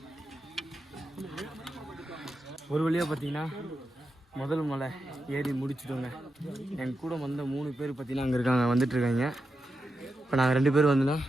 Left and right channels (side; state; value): both; normal; correlation 0.88